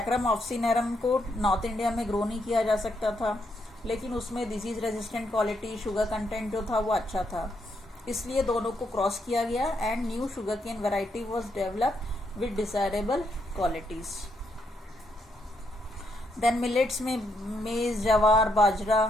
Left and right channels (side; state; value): both; normal; correlation 0.77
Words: ऑफ्सिनेरम को नॉर्थ इंडिया में ग्रो नहीं किया जा सकता था, लेकिन उसमें disease resistant quality, sugar content जो था वो अच्छा था, इसलिए दोनों को क्रॉस किया गया and new sugarcane variety was develop with desirable qualities. Then millets में मेज, जवार, बाजरा,